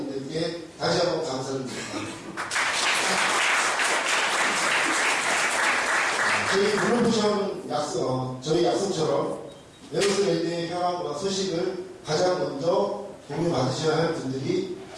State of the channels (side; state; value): both; identical; correlation 1.00